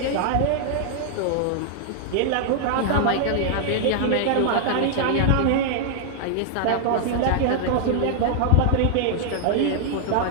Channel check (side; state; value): both; different; correlation 0.00